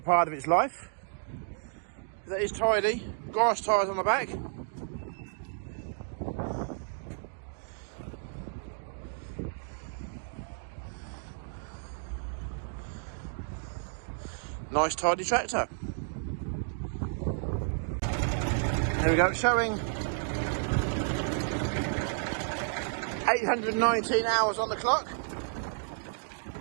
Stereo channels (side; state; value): left; silent; digital silence